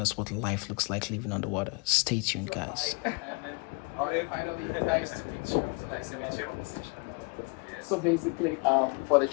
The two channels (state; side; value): quieter; right; 32.8 dB